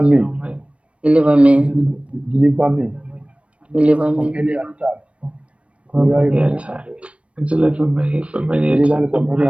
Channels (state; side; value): late; left; 0.061 ms